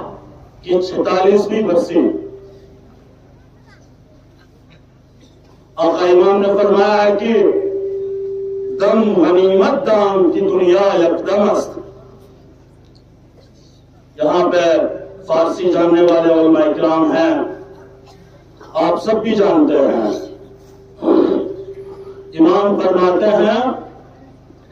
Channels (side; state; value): both; identical; correlation 1.00